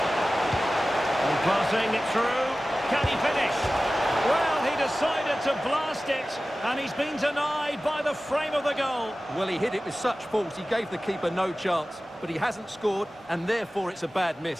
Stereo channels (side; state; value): both; normal; correlation 0.96